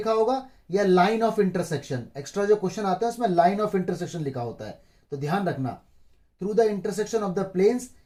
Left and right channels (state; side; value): identical; both; correlation 1.00